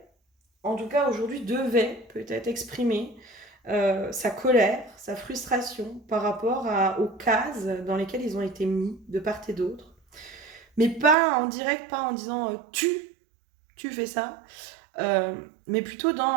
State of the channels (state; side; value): drops out; left; at 11.2 s